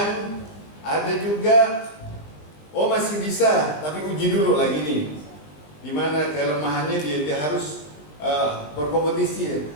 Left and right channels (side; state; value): right; late; 20 ms